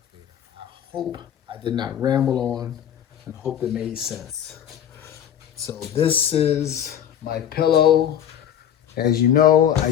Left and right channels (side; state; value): right; quieter; 9.8 dB